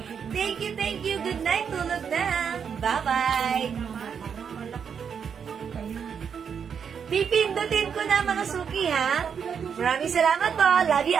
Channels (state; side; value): quieter; left; 7.0 dB